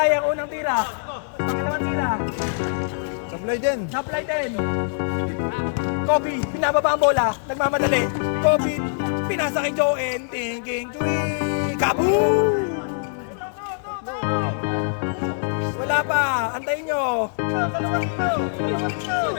ang unang tira. Pangalawang tira. Sablay din. Kobe, pinababa ang bola. Nagmamadali. Kobe, pinasa kay Joel. Thinking, kaboom! Wala pa. Antayin nyo.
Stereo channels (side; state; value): right; silent; 59 dB below the other